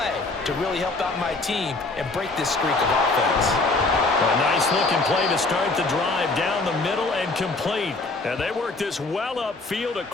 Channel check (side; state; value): right; quieter; 3.4 dB